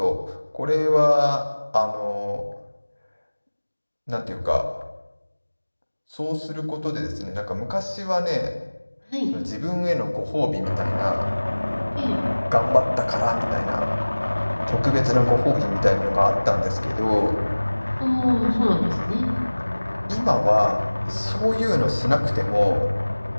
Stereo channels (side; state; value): both; inverted; correlation -1.00